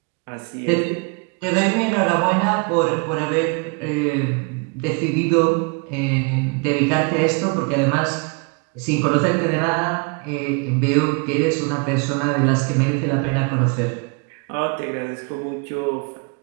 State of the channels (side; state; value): left; quieter; 31.9 dB